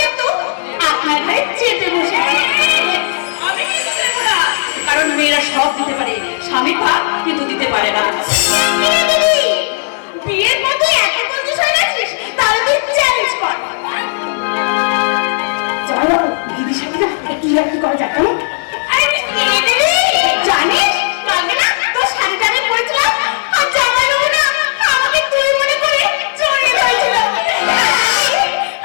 কিন্তু আপনার ঘরে চেপে বসে। আমি কিন্তু দেবো না, কারণ মেয়েরা সব দিতে পারে, স্বামী ভাব কিন্তু দিতে পারে না। বিয়ের মধ্যে এত কিছু হয়ে গেছিস, তাহলে তুই চ্যালেঞ্জ কর। চলো দিদির সাথে না একটু একটু করা যাক। জানিস কালকে না তোর শাড়ি টাড়ি পরেছিলাম আর জামা না আমাকে তুই মনে করে চলে গেছিল।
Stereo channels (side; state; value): right; silent; digital silence